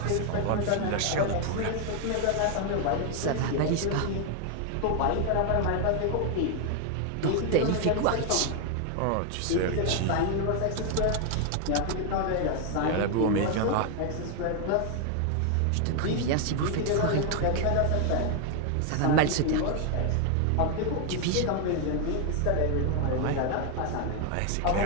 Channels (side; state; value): both; different; correlation 0.00